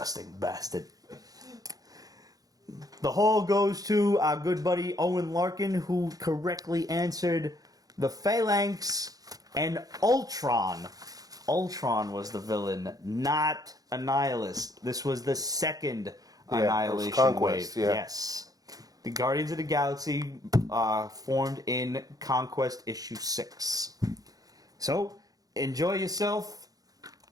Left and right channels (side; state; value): left; late; 0.18 ms